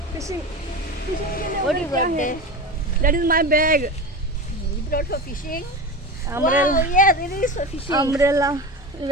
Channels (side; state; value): both; normal; correlation 0.26